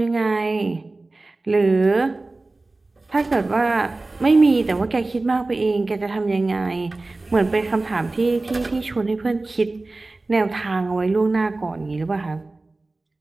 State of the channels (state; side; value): quieter; left; 3.2 dB